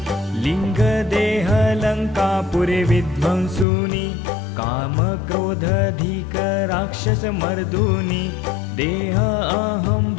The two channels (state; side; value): drops out; right; at 3.7 s